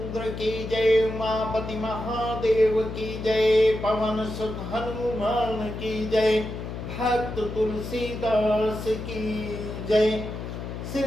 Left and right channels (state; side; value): noise; left; hum, 7 dB below the sound